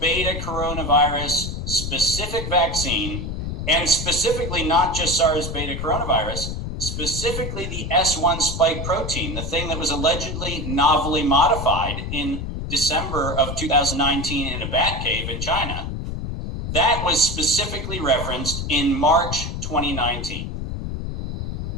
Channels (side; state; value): left; noise; rumble, 5 dB below the sound